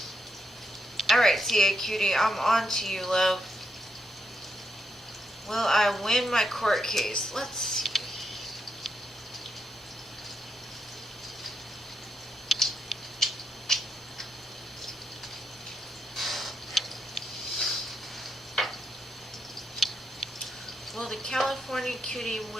Alright, CA Cutie, I'm on to you, love. Will I win my court case? Let's see. Will the California Cutie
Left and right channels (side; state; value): both; normal; correlation 0.81